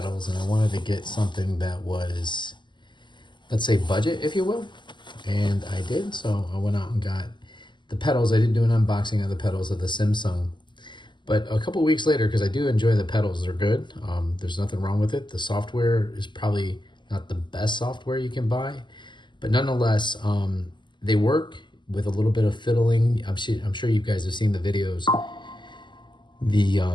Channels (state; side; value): late; right; 0.22 ms